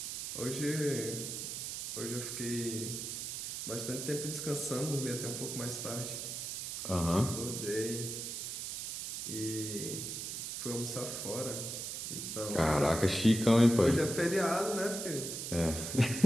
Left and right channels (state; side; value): noise; right; hiss, 5 dB below the sound